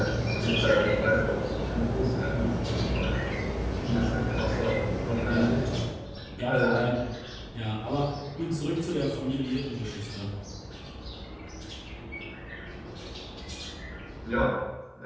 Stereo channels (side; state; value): both; identical; correlation 1.00